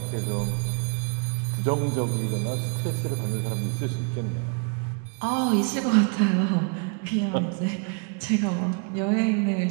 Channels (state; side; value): quieter; left; 37.4 dB